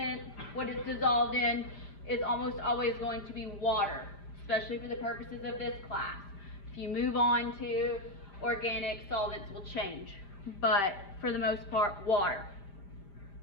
what it's dissolved in, is almost always going to be water, especially for the purposes of this class. If you move on to organic, solvents will change, but for the most part, water.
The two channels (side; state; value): right; late; 5.0 ms